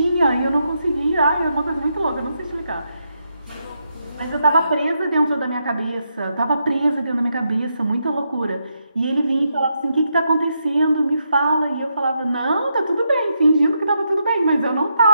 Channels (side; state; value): both; inverted; correlation -0.81